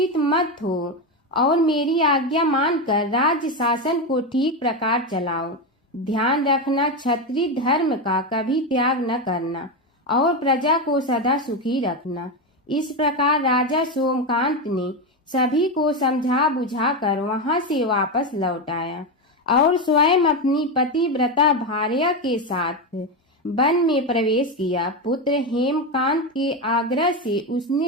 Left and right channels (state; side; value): normal; both; correlation 0.12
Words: मत हो और मेरी आज्ञा मानकर राज्य शासन को ठीक प्रकार चलाओ। ध्यान रखना, क्षत्रिय धर्म का कभी त्याग न करना और प्रजा को सदा सुखी रखना। इस प्रकार राजा सोमकांत ने सभी को समझा बुझाकर वहां से वापस लौट आया और स्वयं अपनी पतिव्रता भार्या के साथ वन में प्रवेश किया। पुत्र हेमकांत के आग्रह से